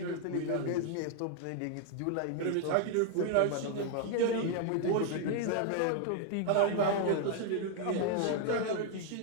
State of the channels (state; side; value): different; both; correlation 0.00